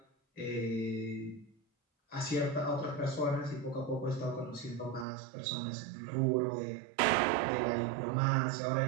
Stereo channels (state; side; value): drops out; left; at 5.1 s